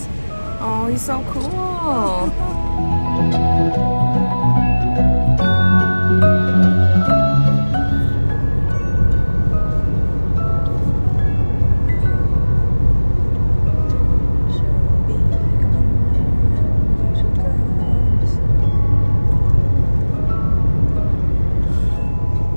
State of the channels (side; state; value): both; inverted; correlation -1.00